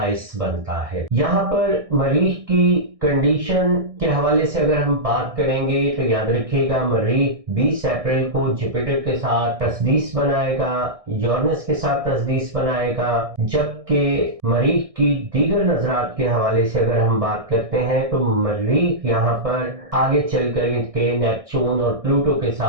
बनता है। यहाँ पर मरीख की कंडीशन के हवाले से अगर हम बात करेंगे तो याद रखिएगा, मरीख 20 अप्रैल को जुपिटर के साथ तस्दीस बनाएगा, यूरेनस के साथ तस्दीस बनाएगा। जबकि मरीख की दीगर नजरात के हवाले से अगर हम बात करते हैं तो मरीख यहाँ पर आगे चल कर के नेपच्यून और प्लूटो के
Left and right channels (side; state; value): left; late; 1.6 ms